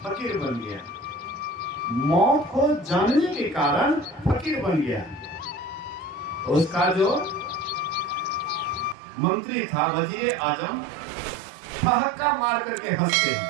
फकीर बन गया, मौत को जानने के कारण फकीर बन गया। उसका जो मंत्री था वजीर आजम, ठहाका मार करके हंसते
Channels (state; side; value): drops out; left; at 9.0 s